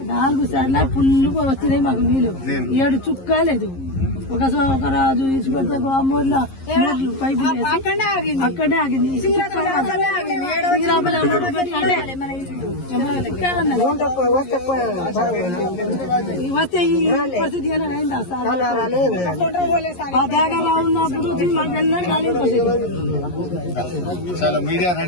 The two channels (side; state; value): right; late; 11 ms